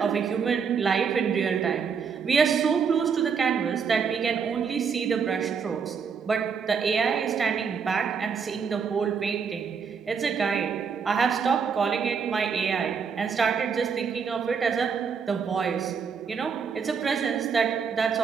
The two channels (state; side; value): quieter; left; 6.2 dB